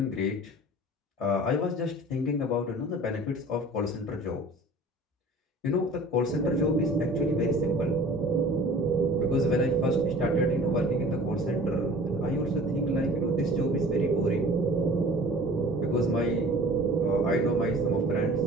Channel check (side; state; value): both; normal; correlation 0.45